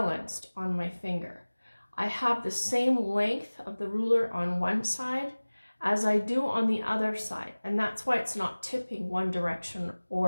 on my finger. I have the same length of the ruler on one side as I do on the other side, and that's why it's not tipping one direction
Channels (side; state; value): both; inverted; correlation -1.00